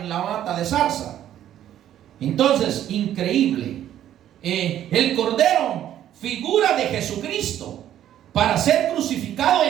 la mata de zarza. Entonces, increíble. El cordero, figura de Jesucristo, para ser crucificado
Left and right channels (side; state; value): left; quieter; 11.5 dB